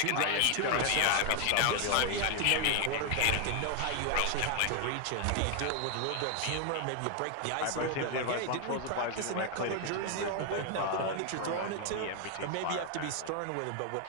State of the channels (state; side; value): different; both; correlation 0.00